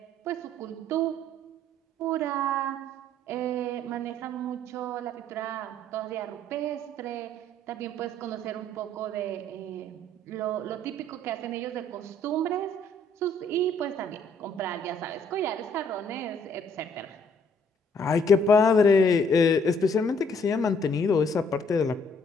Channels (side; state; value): both; normal; correlation 0.63